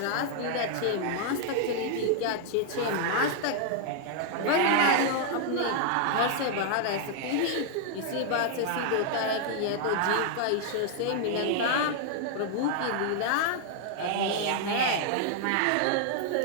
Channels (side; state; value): both; different; correlation 0.00